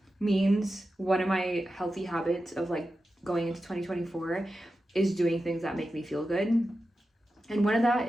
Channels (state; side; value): normal; both; correlation 0.92